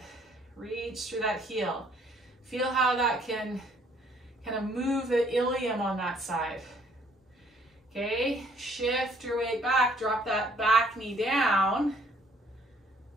Reach through that heel. Feel how that can kind of move the ilium on that side. Okay, shift your weight back, drop that back knee down.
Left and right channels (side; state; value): both; normal; correlation 0.63